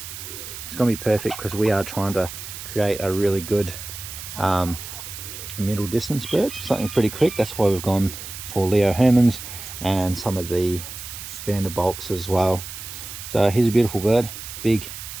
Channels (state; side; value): noise; right; hiss, 10 dB below the sound